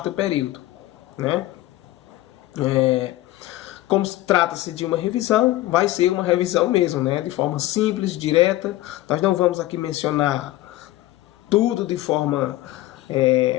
período. Como trata-se de uma revisão, vai ser uma revisão mesmo, de forma simples, direta. Nós não vamos aqui mencionar tudo de forma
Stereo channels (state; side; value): quieter; right; 16.3 dB